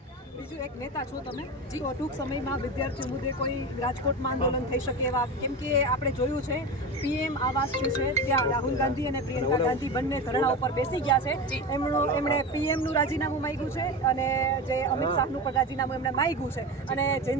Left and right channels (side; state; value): both; normal; correlation 0.24